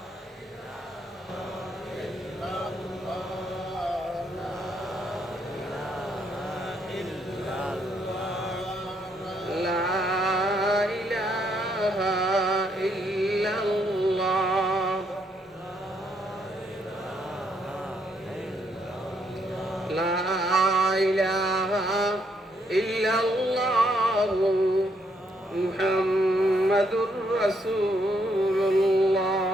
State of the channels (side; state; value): both; normal; correlation 0.73